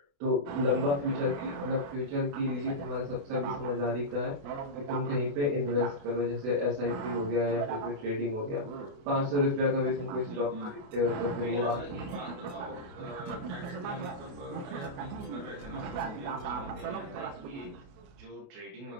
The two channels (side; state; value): left; late; 28 ms